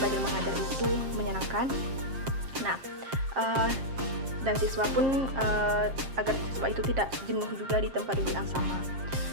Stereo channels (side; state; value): left; late; 7.5 ms